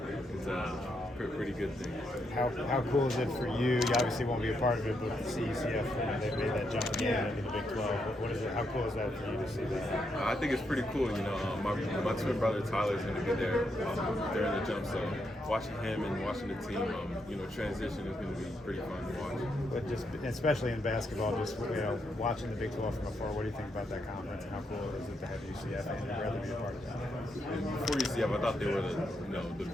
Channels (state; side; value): normal; both; correlation 0.80